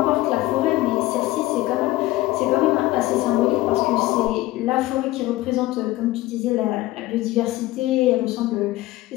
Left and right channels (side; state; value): right; quieter; 17.6 dB